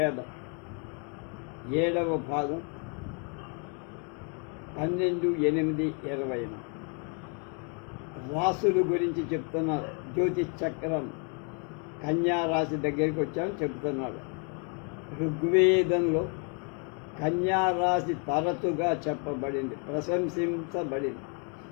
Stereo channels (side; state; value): right; quieter; 37.9 dB